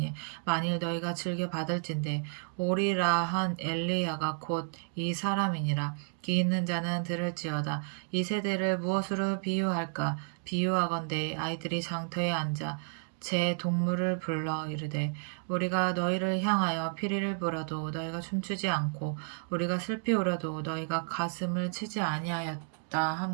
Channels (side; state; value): left; silent; 57 dB below the other